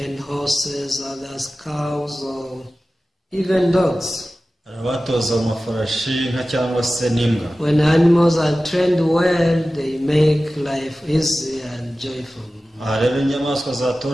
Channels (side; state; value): both; normal; correlation 0.96